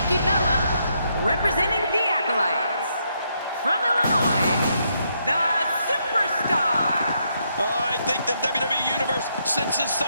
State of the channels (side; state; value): both; inverted; correlation -0.77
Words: Bella, representing the Acolytes. From Illinois, the Superstar. I think the WWE Universe senses